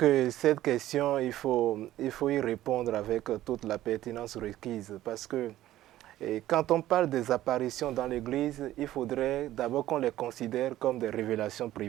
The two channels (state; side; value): quieter; left; 14.3 dB